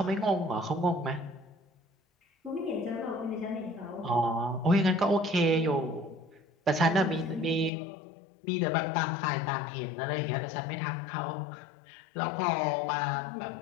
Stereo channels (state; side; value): drops out; right; at 7.7 s